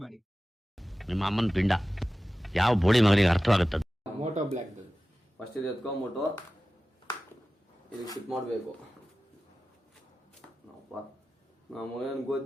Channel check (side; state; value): both; normal; correlation 0.95